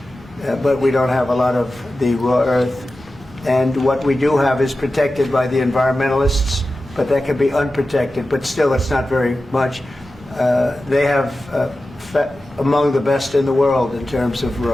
but we don't have a lot of the raw earth. And what we do have is protected by the environmentalists, but that can be unprotected, but still it's not very much. They have among the best in the world in terms of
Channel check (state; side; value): normal; both; correlation 0.94